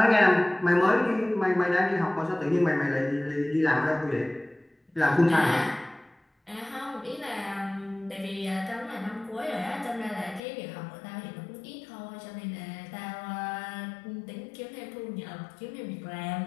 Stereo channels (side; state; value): right; drops out; at 10.4 s